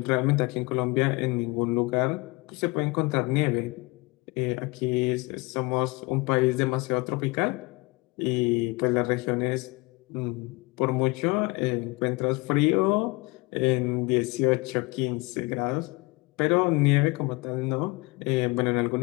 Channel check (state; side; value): quieter; right; 25.8 dB